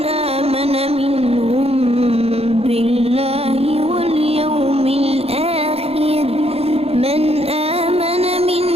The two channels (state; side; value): late; left; 0.29 ms